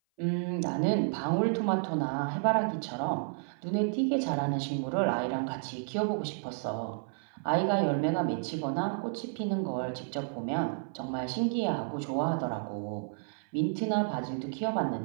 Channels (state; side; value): silent; left; 55 dB below the other